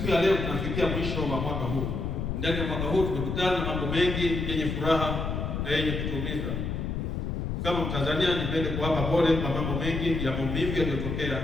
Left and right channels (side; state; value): left; noise; rumble, 2 dB below the sound